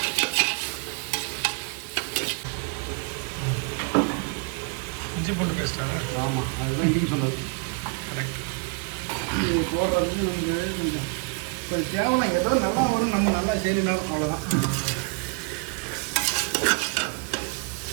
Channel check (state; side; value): quieter; left; 33.6 dB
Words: இஞ்சி பூண்டு பேஸ்டா? ஆமாம், அதுதான் இன்றைக்கி சொன்னது. கரெக்ட். இது போடுறதுக்கு நமக்கு ஒரு கேவலம் ஏதோ நல்லா வரும், நம்ம நல்லா செய்யணும், அவ்வளோதான்.